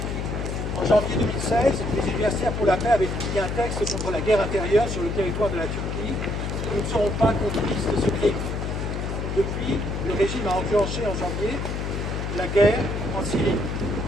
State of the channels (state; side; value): noise; left; hum, 3 dB below the sound